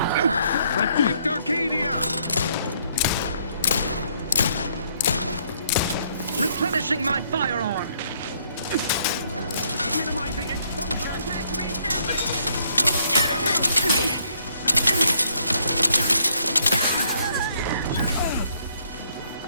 Protect Arcadia! Replenishing my firearm! Minimizing exposure and attack reestablish!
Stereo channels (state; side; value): inverted; both; correlation -0.69